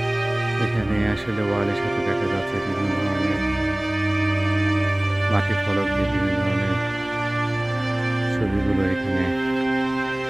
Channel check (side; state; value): left; noise; rumble, 26 dB below the sound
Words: এখানে আসলে ওয়ালের সাথে দেখা যাচ্ছে বিভিন্ন ধরনের মাটির ফলক দিয়ে বিভিন্ন ধরনের ছবিগুলো এখানে